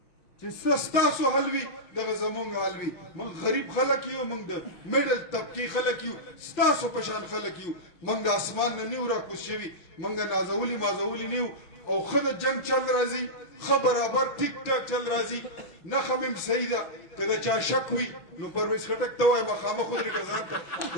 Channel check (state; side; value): late; right; 6.0 ms